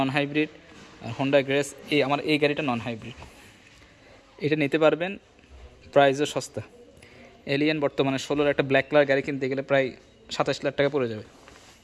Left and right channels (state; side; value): identical; both; correlation 1.00